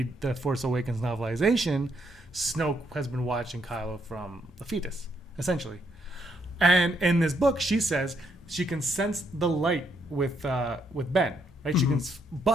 the Force Awakens novelization, Snoke has been watching Kylo from the fetus, essentially. And in this book, she says she can sense the light with Ben. Right, she can,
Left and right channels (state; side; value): normal; both; correlation 0.75